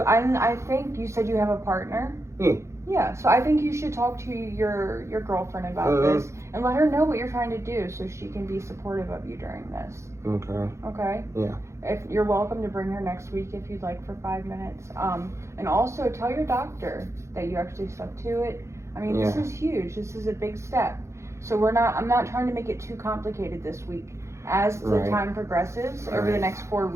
I think you said you have a partner? Yeah. Yeah, so I think you should talk to your girlfriend about this and let her know what you're trying to do so she can be supportive of you during this. Okay. Okay? Yeah. If you're welcome to bring her next week if you'd like for 5 minutes. And also tell your doctor that you actually stuck to it. I mean, this is huge. This is a big step. So I'm not trying to make it too complicated this week. As the time progresses over the next 4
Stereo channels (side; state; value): left; late; 0.14 ms